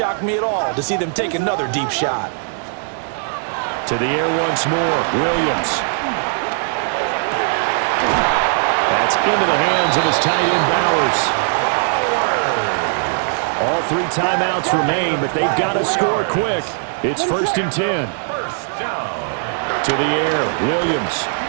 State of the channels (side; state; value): left; silent; 67 dB below the other